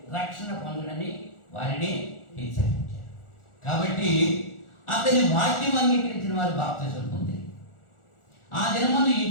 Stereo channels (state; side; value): late; right; 1.4 ms